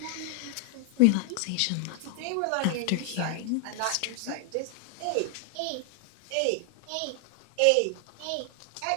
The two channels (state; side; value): different; both; correlation 0.00